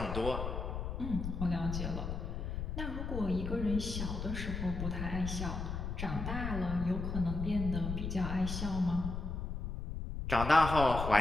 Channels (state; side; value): noise; left; rumble, 4 dB below the sound